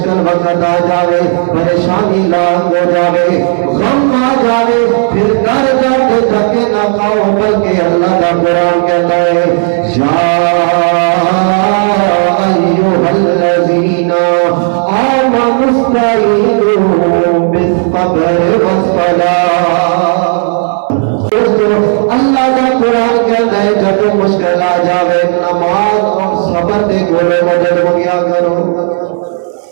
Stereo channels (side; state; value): left; silent; 59 dB below the other